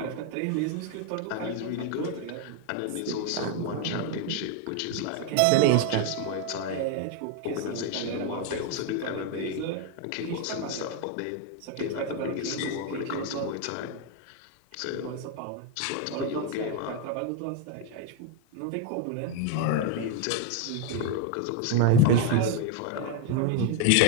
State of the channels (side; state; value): both; different; correlation 0.01